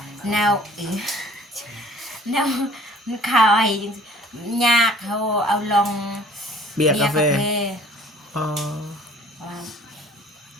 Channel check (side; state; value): both; normal; correlation 0.51